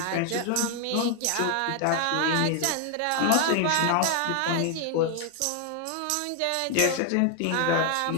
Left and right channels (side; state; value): both; different; correlation 0.00